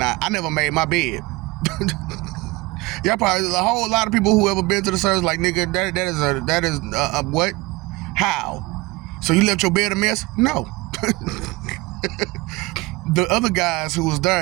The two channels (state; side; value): quieter; left; 22.7 dB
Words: I never made my bed. Y'all probably, a whole lot of people who ever been to the service like, nigga, that is what? How? So you left your bed a mess? No. The other guys who was